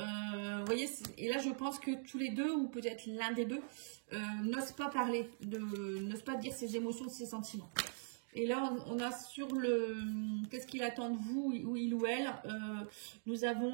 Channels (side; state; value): left; silent; digital silence